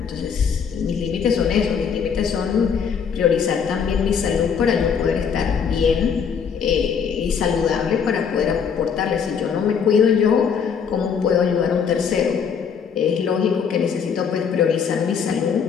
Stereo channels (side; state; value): right; quieter; 6.8 dB